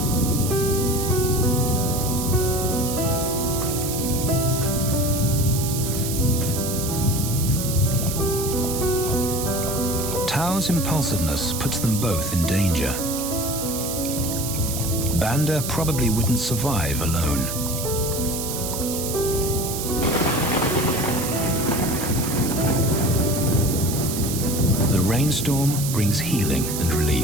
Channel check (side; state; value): right; noise; hiss, 5 dB below the sound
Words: Tao's impulsiveness puts them both in danger. Banda probably wouldn't survive alone. The rainstorm brings healing and